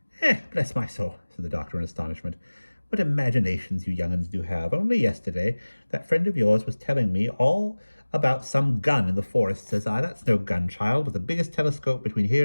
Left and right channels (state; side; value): inverted; both; correlation -1.00